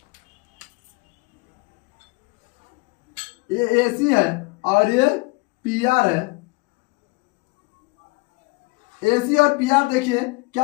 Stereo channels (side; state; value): right; quieter; 25.9 dB